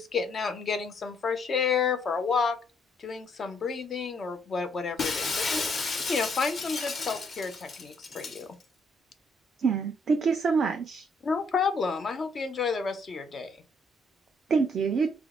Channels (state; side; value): normal; both; correlation 0.68